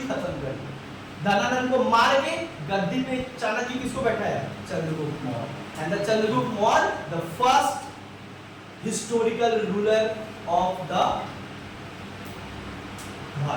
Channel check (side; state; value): both; identical; correlation 1.00